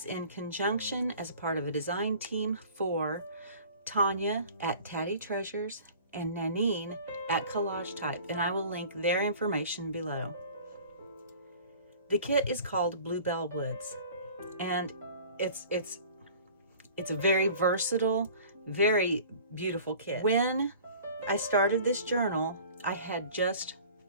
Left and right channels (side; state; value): both; inverted; correlation -0.45